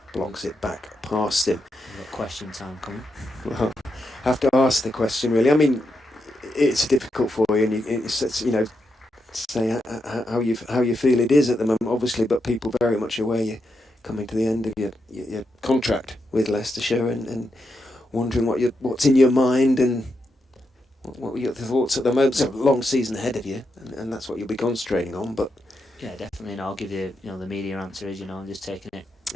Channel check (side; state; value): both; normal; correlation 0.84